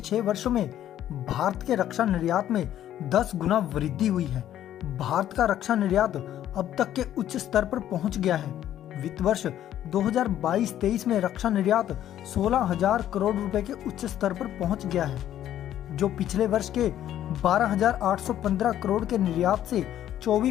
वर्षों में भारत के रक्षा निर्यात में 10 गुना वृद्धि हुई है। भारत का रक्षा निर्यात अब तक के उच्च स्तर पर पहुंच गया है। वित्त वर्ष 2022-23 में रक्षा निर्यात 16,000 करोड़ रुपए के उच्च स्तर पर पहुंच गया है, जो पिछले वर्ष के 12,815 करोड़ के निर्यात से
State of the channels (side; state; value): right; quieter; 11.6 dB